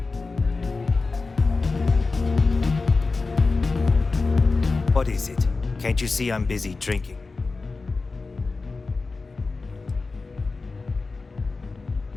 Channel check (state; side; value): quieter; right; 3.9 dB